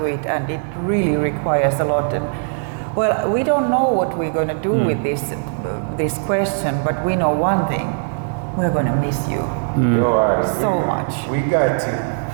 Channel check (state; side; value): silent; left; 66 dB below the other